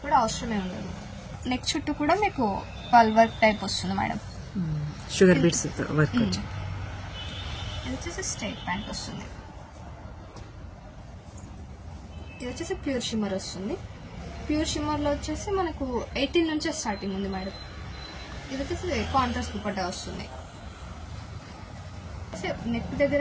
కూడా అవసరమే ఉండదు. నెక్ చుట్టూ కూడా మీకు పల్ వర్క్ టైప్ వస్తుంది మేడం, షుగర్ బీట్స్ వర్క్. ఇది వచ్చేసి స్ట్రైట్ ప్యాంట్ వస్తుంది. ఇది వచ్చేసి ప్యూర్ షిమ్మర్ వస్తుంది. ప్యూర్ షిమ్మర్లో వచ్చేసి మనకు 18 నుంచే స్టార్టింగ్ ఉంది మేడం. ఇది వచ్చేసి కాంట్రాస్ట్ దుపట్టా వస్తుంది. నెక్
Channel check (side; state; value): both; identical; correlation 1.00